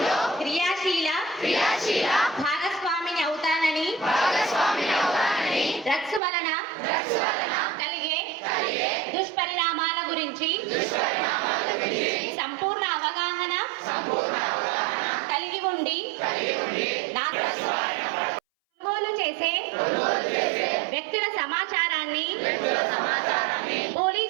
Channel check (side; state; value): left; drops out; at 6.2 s